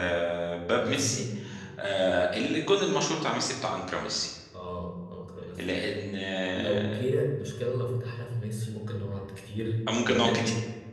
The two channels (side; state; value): both; identical; correlation 1.00